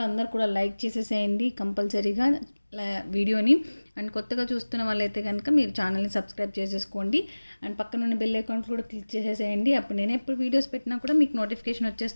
అందరు కూడా లైక్ చేసేసేయండి కంపల్సరీగా వీడియోని. అండ్ కొత్తగా చూస్తున్న వాళ్ళైతే కనుక మీరు ఛానల్ని సబ్స్క్రైబ్ చేసేసుకోండి. అండ్ పక్కనున్న బెల్ అకౌంట్ కూడా క్లిక్ చేసేసేయండి. అప్పుడు నేను ఎప్పుడు వీడియోస్ పెట్టినా కూడా మీకు నోటిఫికేషన్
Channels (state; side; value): inverted; both; correlation -1.00